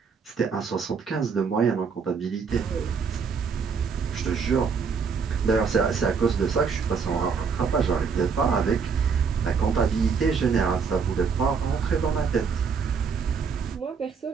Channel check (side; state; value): left; quieter; 5.7 dB